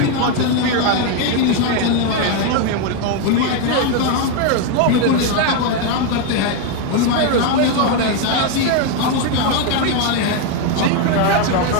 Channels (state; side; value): different; both; correlation 0.02